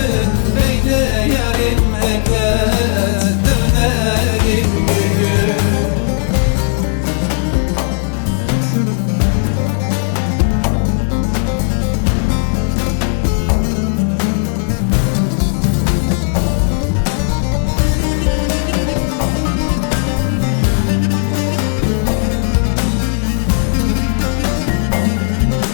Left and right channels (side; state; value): right; silent; 57 dB below the other